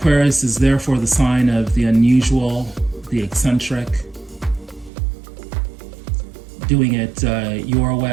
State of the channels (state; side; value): drops out; left; at 4.9 s